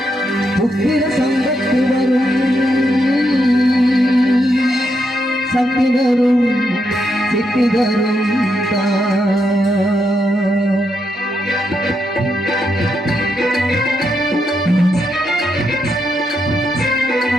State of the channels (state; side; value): normal; both; correlation 0.81